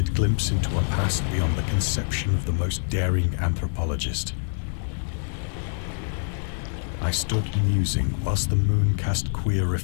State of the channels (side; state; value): right; silent; digital silence